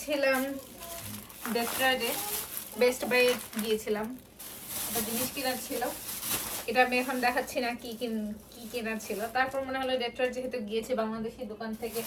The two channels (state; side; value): identical; both; correlation 1.00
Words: ডেট্রয়েটে, বেস্ট বাই গিয়েছিলাম। একটা জিনিস কেনার ছিল, এটা আমি এখন দেখাচ্ছি না কি কেনার ছিল। তারপর মনে হলো ডেট্রয়েট যেহেতু গিয়েছি, বাংলাদেশি দোকান থেকে